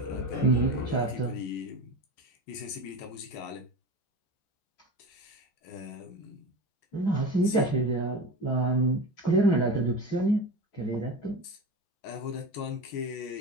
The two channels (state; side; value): late; right; 14 ms